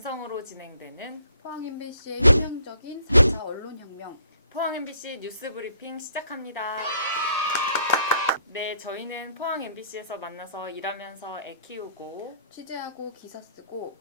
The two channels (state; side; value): inverted; both; correlation -0.64